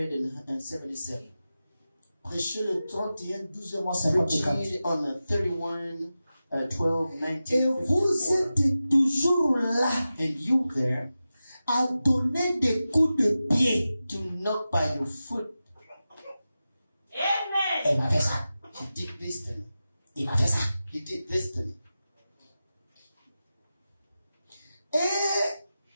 Prêchez le 31, 12 mois 54. preaching on the 31, 12, Et 19, vous 54. êtes toujours là And you there à donner des coups de pied. to knock by your foot. Amen. Il m'a fait ça. He did this to me. Il m'a fait ça. He did this to me. Et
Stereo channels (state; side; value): inverted; both; correlation -0.93